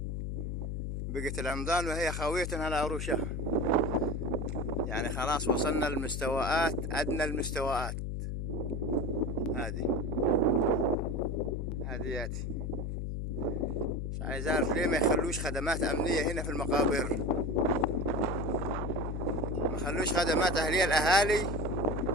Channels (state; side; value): noise; left; hum, 3 dB below the sound